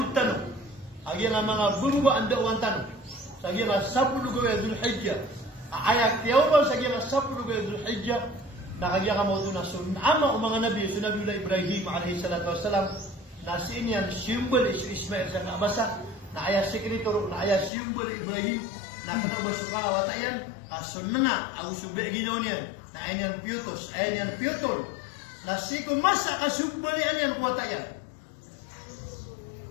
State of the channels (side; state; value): right; drops out; at 17.7 s